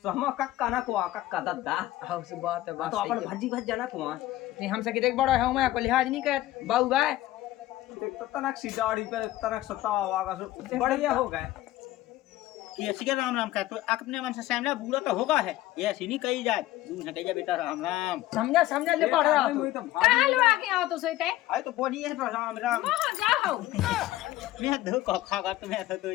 तो हम कक्का ना कुआ कक्का दादा हाँ उस बात है बात तो अपन भजी भज जाना कुआ नहीं हमसे कितने बड़ा है मैं को लिहाज नहीं कर बाऊ गाय देख तो तनक सी दाढ़ी पे तनक सतावा वागा सो बढ़िया हो गए ये ऐसी के राम राम कह तो अपने मन से सामने बूढ़ा तो होगा है, ये ऐसी नहीं कही जाए, तू न कही जा बेटा राम राम। समझा समझा ले पढ़ रहा तू। कहाँ लो आके आओ तो सोते अरे तो बोली है तो राम राम। वहाँ जाओ। मैं दो को खागा तुम्हें तो दो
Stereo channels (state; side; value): quieter; right; 15.7 dB